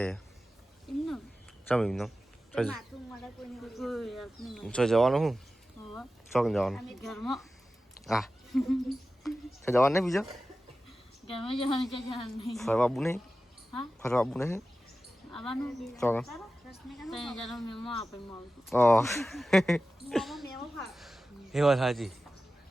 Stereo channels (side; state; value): both; normal; correlation 0.94